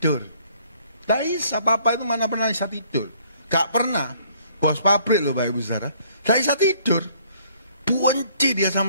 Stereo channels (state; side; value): inverted; both; correlation -0.62